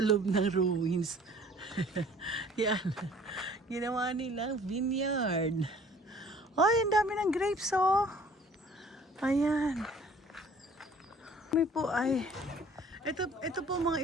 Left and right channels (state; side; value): normal; both; correlation 0.53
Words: ng ruins. Yan. Ginawa nilang vineyard. Ay, ang dami ng grapes, oh. Ayan. May po ay... Ito po mga